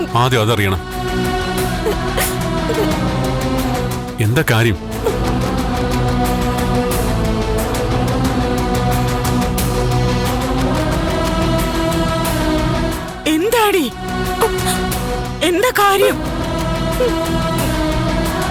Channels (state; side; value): identical; both; correlation 1.00